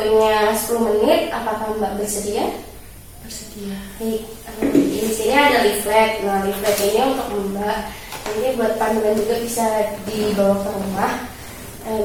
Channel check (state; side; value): identical; both; correlation 1.00